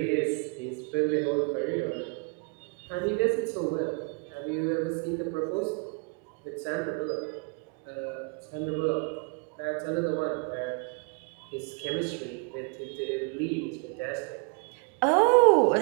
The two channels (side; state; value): left; quieter; 34.3 dB